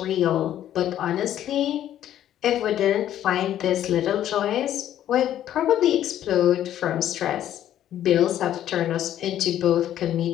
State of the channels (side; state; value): right; quieter; 11.6 dB